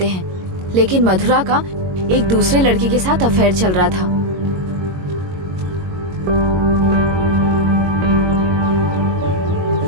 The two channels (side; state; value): left; late; 22 ms